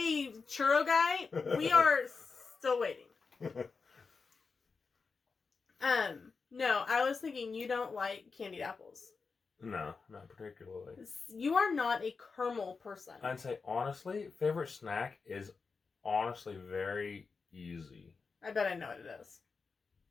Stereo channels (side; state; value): right; quieter; 4.8 dB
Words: churro guy. We are still waiting. No, I was thinking you don't like candied apples. No, not particularly. You are not a caramel person. I'd say, honestly, favorite snack is honestly very easy. I bet I know what it is.